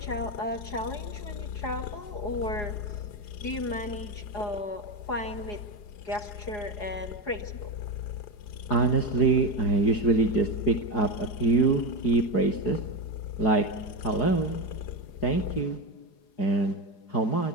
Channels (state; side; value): late; right; 4.8 ms